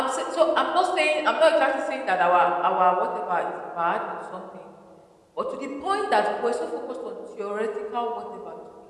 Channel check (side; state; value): both; identical; correlation 1.00